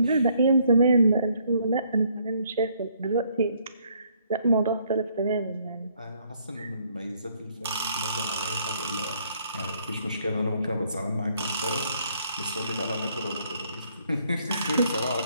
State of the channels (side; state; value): both; inverted; correlation -0.68